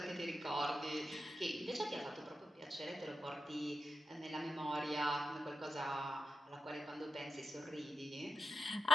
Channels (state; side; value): normal; both; correlation 0.87